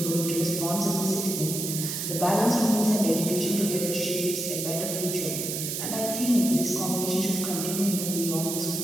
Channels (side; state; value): right; noise; hiss, 3 dB below the sound